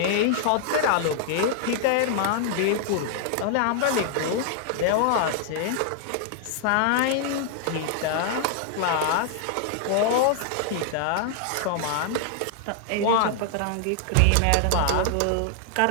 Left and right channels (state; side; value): different; both; correlation 0.00